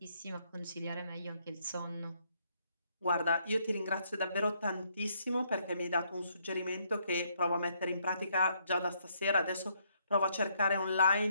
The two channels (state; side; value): inverted; both; correlation -0.71